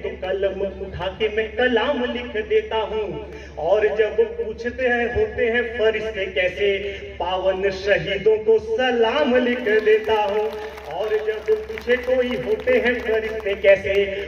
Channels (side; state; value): both; identical; correlation 1.00